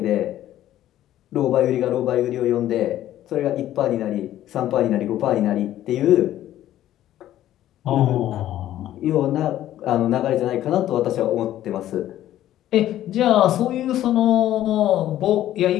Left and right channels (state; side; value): quieter; right; 12.9 dB